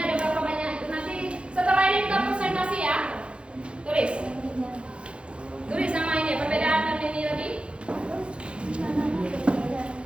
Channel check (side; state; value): left; late; 0.058 ms